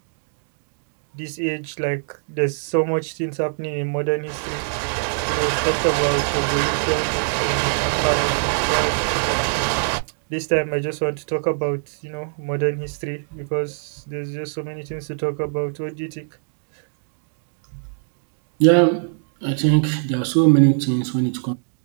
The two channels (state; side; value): silent; left; digital silence